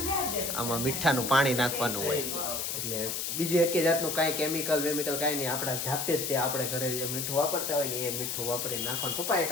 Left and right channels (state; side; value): noise; left; hiss, 2 dB below the sound